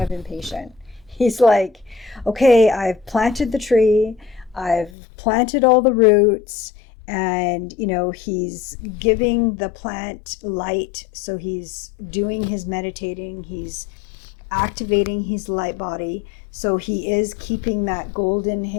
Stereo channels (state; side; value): drops out; right; at 4.9 s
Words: of impatient. He's like, okay, I've planted the tree, I've planted all the roots, and he's giving the plant light. So he's doing his meditating, he's activating his light body. So he is keeping that golden